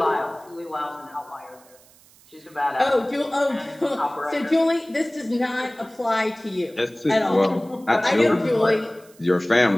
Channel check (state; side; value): noise; right; hiss, 27 dB below the sound